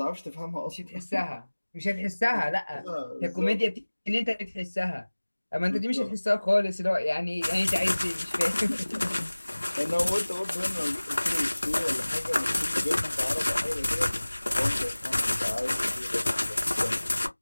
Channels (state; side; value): inverted; both; correlation -1.00